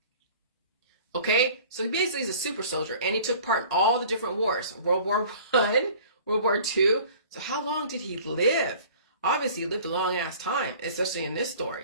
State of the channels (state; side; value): inverted; both; correlation -0.47